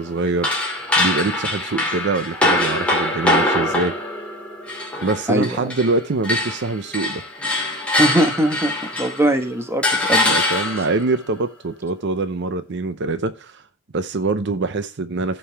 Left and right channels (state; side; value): normal; both; correlation 0.30